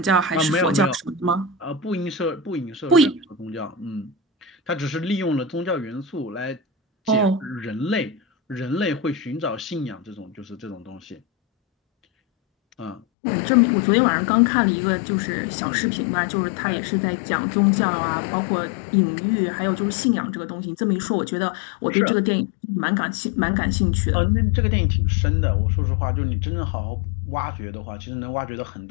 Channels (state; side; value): drops out; right; at 13.0 s